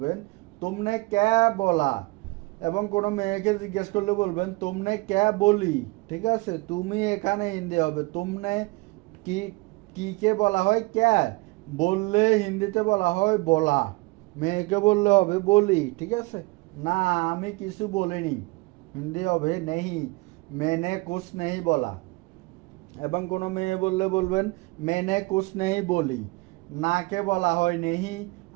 तुमने क्या बोला, এবং কোনো মেয়েকে জিজ্ঞেস করলে বলবেন तुमने क्या बोली। ঠিক আছে, তুমি এখানে হিন্দি হবে तुमने, কি কে বলা হয় क्या, বললে হিন্দিতে বলা হয় বলা, মেয়েকে বললে হবে বলি। ঠিক আছে, না আমি কিছু বলিনি হিন্দি হবে नहीं, मैंने कुछ नहीं बोला, এবং কোনো মেয়ে বললে বলবেন मैंने कुछ नहीं बोली। নাকে বলা হয় नहीं,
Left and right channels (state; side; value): quieter; left; 25.0 dB